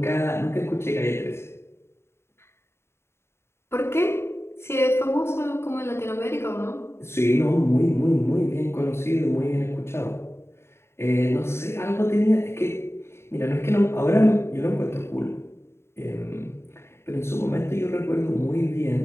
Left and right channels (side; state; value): right; late; 0.12 ms